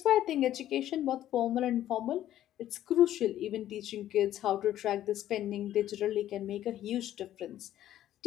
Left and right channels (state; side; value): quieter; right; 12.5 dB